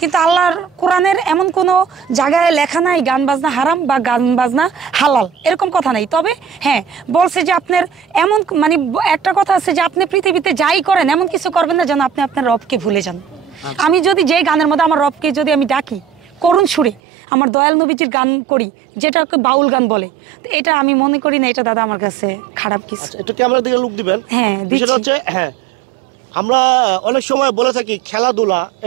কিন্তু আল্লাহর কোরআনের এমন কোনো জায়গায় লেখা নাই গান বাজনা হারাম বা গান বাজনা হালাল এরকম কথা নাই তবে হ্যাঁ বলছে যে আপনার এমন মানে একটা কথা আছে যে আপনি পৃথিবীতে যাই করেন এমন কিছু করবেন না যেন আপনি আপনার রবকে ভুলে যান আমি যদি যেই গানের মধ্যে আমার রবকে যদি আমি ডাকি করুণ সুরে আমার দয়াল নবীজির গান করি যেটাকে বাউল গান বলে তো এটা আমি মনে করি না এটা দাদা আমার কাছে খারাপ কিছু একটু ক্যামেরা দিকে লুক দিবেন হ্যাঁ বিষয়টা হচ্ছে হ্যাঁ আমরা অনেক সময় বলে থাকি খেলাধুলা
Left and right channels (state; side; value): drops out; left; at 17.0 s